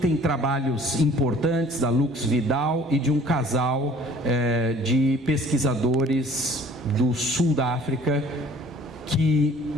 trabalhos importantes da Lux Vidal e de um casal de pesquisadores do sul da África, que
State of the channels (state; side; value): normal; both; correlation 0.52